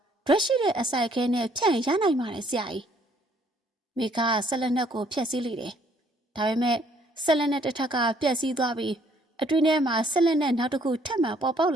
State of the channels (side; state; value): both; normal; correlation 0.64